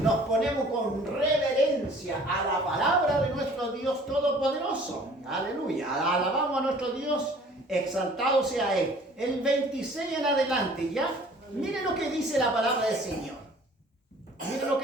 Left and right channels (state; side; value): normal; both; correlation 0.52